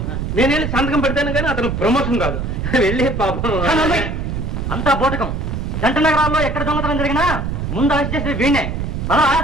నేను వెళ్ళి సంతకం పెడతాను కానీ అతను ప్రమోషన్ కాదు. వెళ్ళి పాపం అంతా బోటకం. జంట నగరాల్లో ఎక్కడ దొంగతనం జరిగినా ముందు అరెస్ట్ చేసేది వీణే.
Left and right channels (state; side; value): noise; right; rumble, 3 dB below the sound